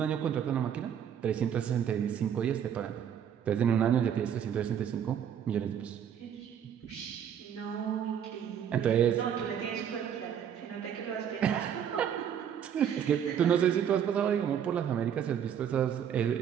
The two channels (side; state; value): left; quieter; 8.8 dB